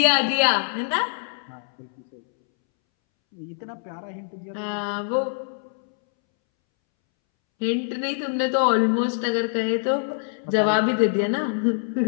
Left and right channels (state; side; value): silent; right; 62 dB below the other